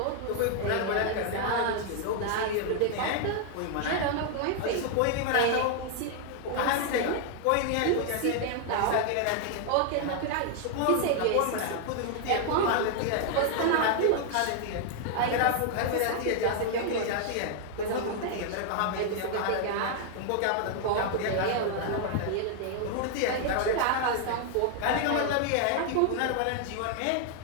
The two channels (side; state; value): both; different; correlation 0.00